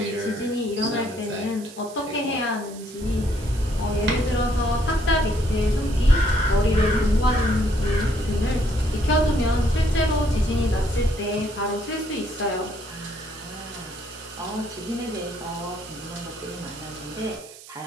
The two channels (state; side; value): noise; right; hiss, 18 dB below the sound